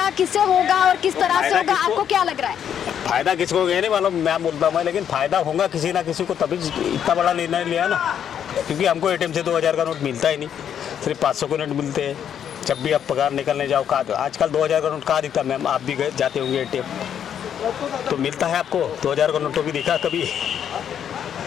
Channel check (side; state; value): right; quieter; 8.9 dB